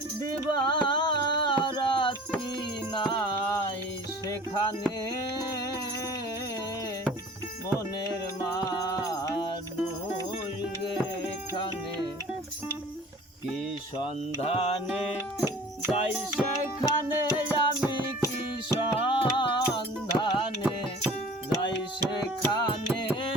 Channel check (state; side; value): normal; both; correlation 0.45